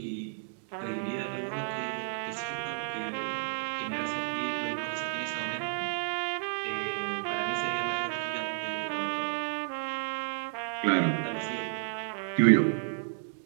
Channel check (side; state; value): left; silent; digital silence